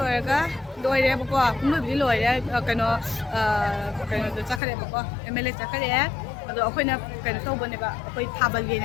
ka. Loy deh pokok. Mungkin di loy deh. Kano tu cakap deh pokok. MLA cakap deh. Aduh, aku ni kano tahu benda ba. Aku tabal ni.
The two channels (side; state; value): right; drops out; at 4.6 s